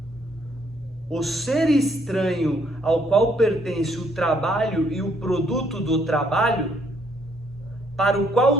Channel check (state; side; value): normal; both; correlation 0.68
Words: O ser estranho ao qual pertence o trabalho e o produto do trabalho, para o